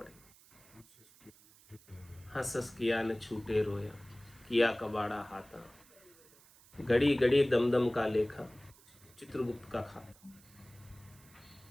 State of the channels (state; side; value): noise; right; hiss, 25 dB below the sound